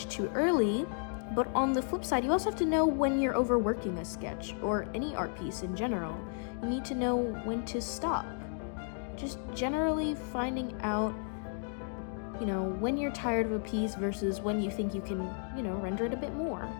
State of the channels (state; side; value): silent; right; 56 dB below the other